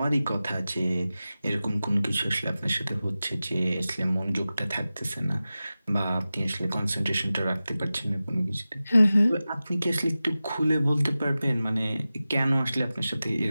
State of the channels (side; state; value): both; inverted; correlation -0.95